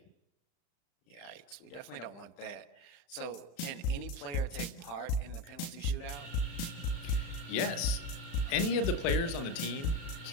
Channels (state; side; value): late; right; 36 ms